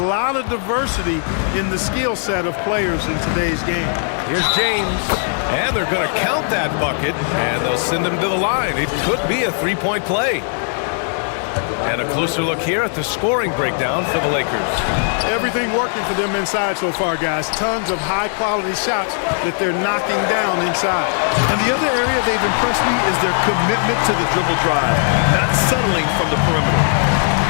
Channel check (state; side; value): silent; right; 63 dB below the other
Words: of diversity in the skill set of players in today's game. Here's James. And they're going to count that bucket, and they'll send him to the line. It could be a three-point play. And a closer look here at the scoring breakdown for the Lakers. Everything working for them inside so far, guys. Tons of high-quality shots that they're knocking down inside. And the other area they've impressed me is their commitment to the dribble drive, not settling from the perimeter.